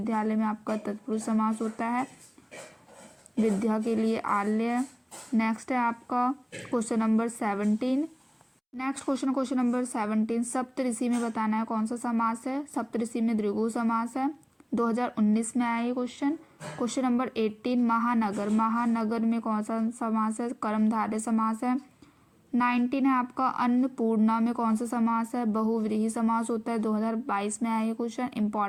में आपका तत्पुरुष समास होता है, विद्या के लिए आल्य। नेक्स्ट है आपका question number 17। Next question number 17, सप्तऋषि में बताना है कौन सा समास है। सप्तऋषि में द्विगु समास है। 2019 में आया ये क्वेश्चन। क्वेश्चन नंबर 18, महानगर। महानगर में कौन सा समास है? कर्मधारय समास है। 19 है आपका अन्नपूर्णा में कौन सा समास है? बहुव्रीहि समास होता है। 2022 में आया ये क्वेश्चन,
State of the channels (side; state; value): both; identical; correlation 1.00